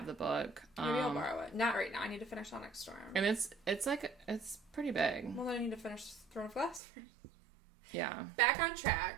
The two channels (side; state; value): left; drops out; at 6.8 s